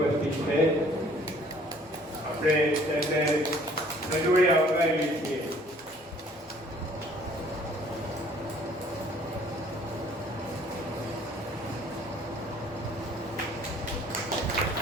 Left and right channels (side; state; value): both; normal; correlation 0.57